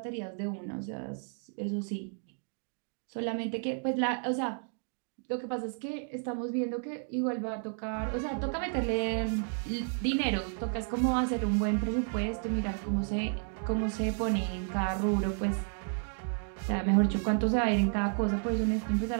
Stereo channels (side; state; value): left; silent; 56 dB below the other